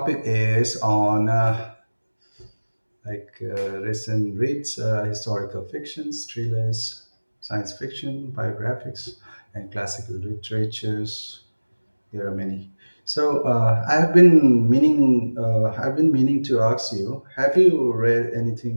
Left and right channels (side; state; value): both; inverted; correlation -1.00